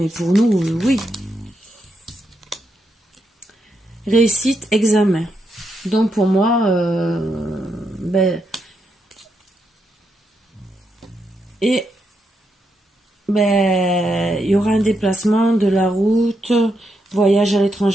pour nous, oui. Réussite, examen. Donc pour moi, il y aura un déplacement de la route, voyage à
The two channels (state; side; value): normal; both; correlation 0.82